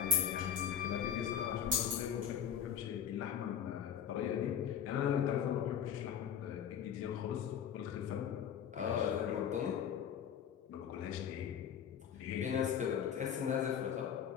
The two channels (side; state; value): right; quieter; 8.6 dB